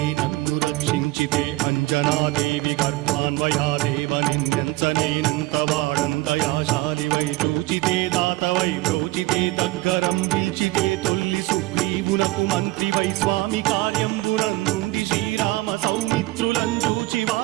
నన్ను రక్షించితే అంజనాదేవి కర్మాన్వయాదేవ నిన్నెంచనేనంత వాడంతయాశాలివై చూచితే దాతవై ప్రోచితే దగ్గరం పిలిచితే తొల్లి సుగ్రీవునకు మంత్రివై స్వామి కార్యంబునందుండి శ్రీరామ సౌమిత్రులం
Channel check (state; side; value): quieter; left; 20.2 dB